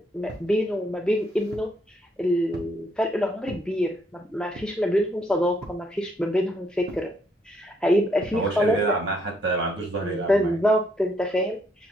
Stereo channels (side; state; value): both; normal; correlation 0.71